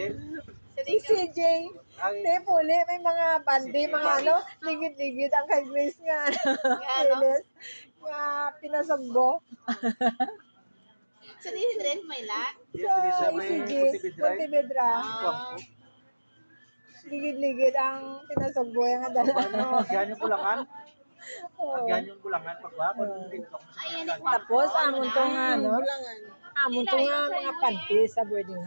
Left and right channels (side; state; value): both; inverted; correlation -1.00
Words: Si CJ. Ay, Te, puli, may mga bandi, mga ano, ligid-ligid ang kay Grace nga. Ano? Silis. Nga pinasagbo. Sa din may lang. Sa ICG, Montebedra. Ah. Ligid-ligid ang pinasagbo yung dala. Ano, agyan yung bulangan? Oo. Agyan yung bulangan pagwa, kung dito. Ay, yan yung Tapos, amon to nga, ano, Bulangan. amon to nga mga panty sa boarding